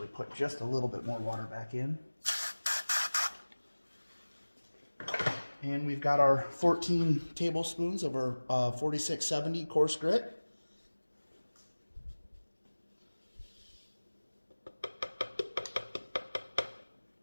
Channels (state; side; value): inverted; both; correlation -1.00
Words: put just a little bit more water back in. And we've got our 14 tablespoons of our 4670 coarse grit.